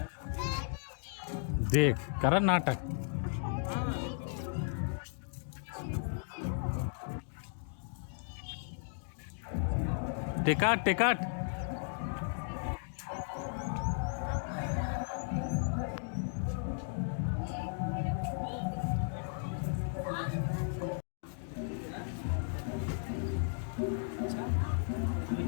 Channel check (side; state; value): right; silent; digital silence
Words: देख करा नाटक। Ticket ticket.